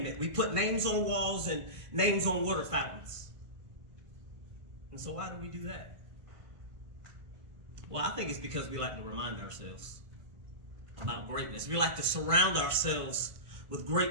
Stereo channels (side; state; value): left; late; 1.5 ms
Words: it. We put names on walls and names on water fountains. And so why do we do that? Well, I think it's because we like to remind ourselves about greatness. We like to surround ourselves with